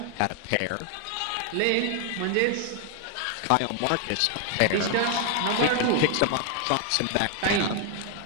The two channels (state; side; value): different; both; correlation 0.00